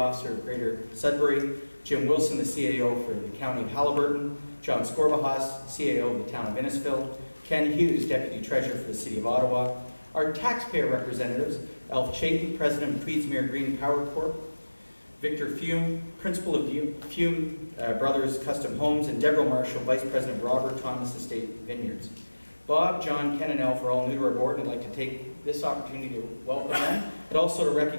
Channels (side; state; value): both; inverted; correlation -1.00